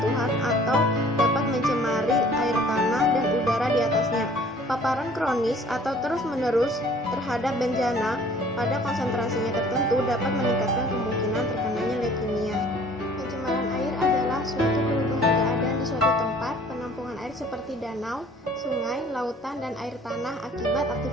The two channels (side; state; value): both; normal; correlation 0.53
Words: atau dapat mencemari air tanah dan udara di atasnya. Paparan kronis atau terus-menerus terhadap bencana pada konsentrasinya tertentu dapat meningkatkan kemungkinan terkenanya leukemia. Pencemaran air adalah suatu perubahan keadaan di suatu tempat, penampungan air seperti danau, sungai, lautan, dan air tanah akibat